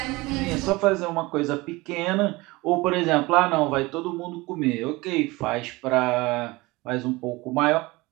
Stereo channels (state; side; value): quieter; left; 22.1 dB